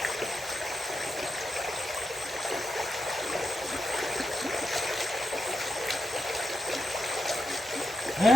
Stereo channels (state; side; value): normal; both; correlation 0.86